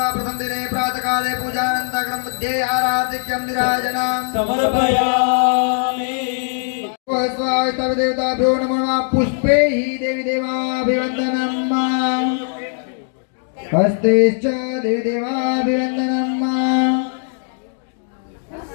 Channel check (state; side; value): silent; right; 66 dB below the other